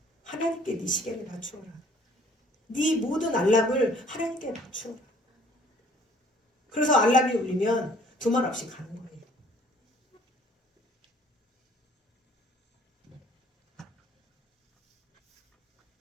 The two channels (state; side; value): normal; both; correlation 0.57